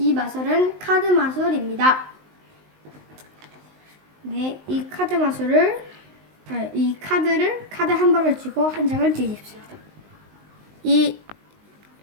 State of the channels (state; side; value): late; left; 19 ms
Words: 마술은 카드 마술입니다. 네, 이 카드를 카드 한 벌을 쥐고 한 장을 뒤집습니다. 이